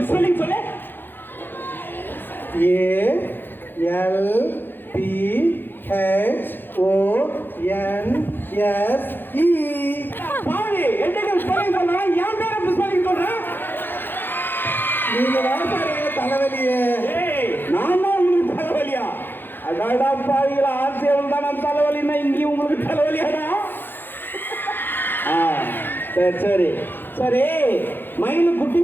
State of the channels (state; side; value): late; right; 0.098 ms